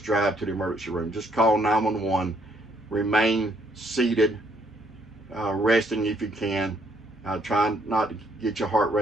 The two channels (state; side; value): normal; both; correlation 0.68